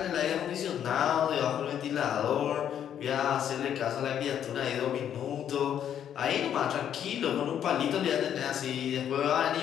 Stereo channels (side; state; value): right; quieter; 9.6 dB